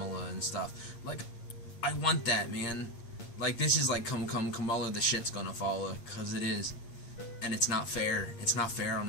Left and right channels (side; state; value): right; late; 8.3 ms